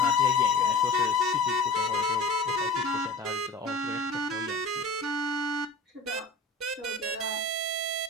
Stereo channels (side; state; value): right; quieter; 3.3 dB